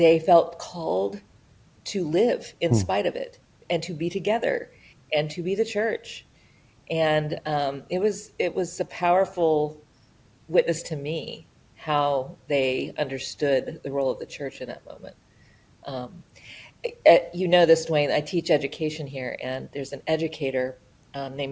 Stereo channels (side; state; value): both; identical; correlation 1.00